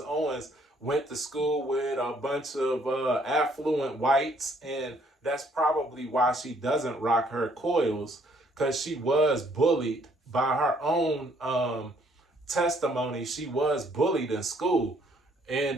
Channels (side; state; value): both; normal; correlation 0.64